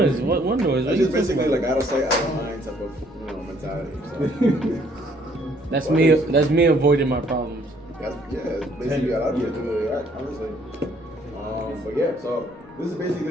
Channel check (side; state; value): left; noise; rumble, 28 dB below the sound